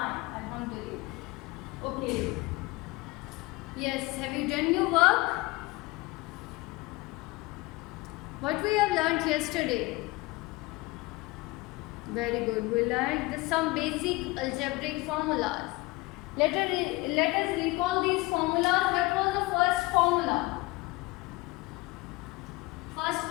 alhamdulillah. Okay. Yes, have you done your work? What we have learned yesterday? Very good. We learned some basic algebraic formulas. Let us recall these formulas. What was the first formula? First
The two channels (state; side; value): quieter; right; 22.3 dB